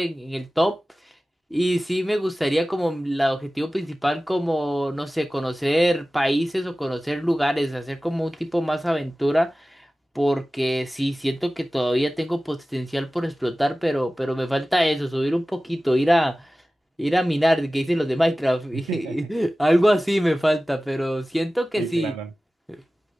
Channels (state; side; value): normal; both; correlation 0.96